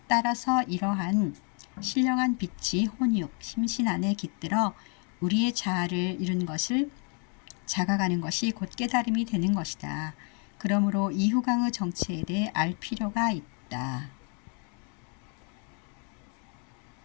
따라서 이러한 신령한 빛이 혼육, 심신 안에 깃들어 우리의 자아를 이룬 것을 자각하는 것이 곧 깨달음이 되는 것이다. 그러므로 이 후광의 정체에 대해 알 필요가 있다.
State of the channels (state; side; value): quieter; right; 38.4 dB